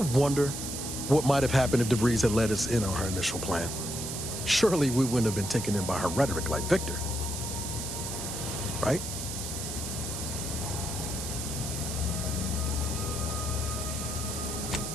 what might have happened if DeVries had let us in on her initial plan? Surely we wouldn't have been taken in by her rhetoric like Victor. Right?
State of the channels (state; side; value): noise; right; hiss, 5 dB below the sound